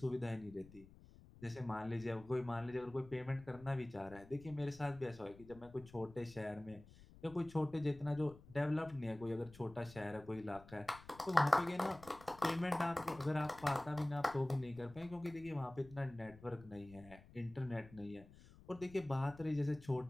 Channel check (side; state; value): left; noise; rumble, 20 dB below the sound